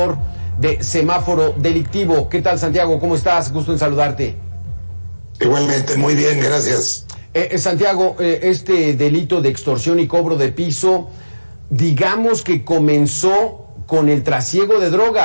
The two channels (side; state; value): both; inverted; correlation -1.00